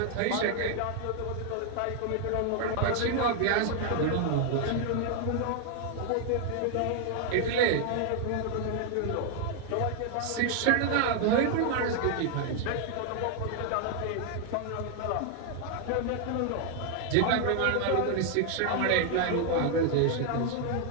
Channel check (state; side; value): different; both; correlation 0.00